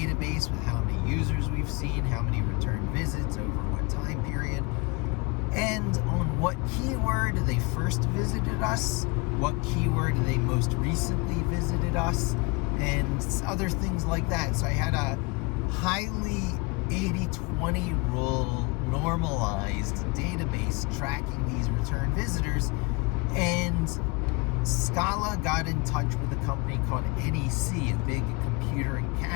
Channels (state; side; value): quieter; right; 28.1 dB